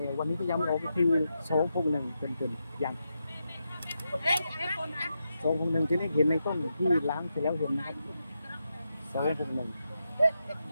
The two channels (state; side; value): inverted; both; correlation -0.86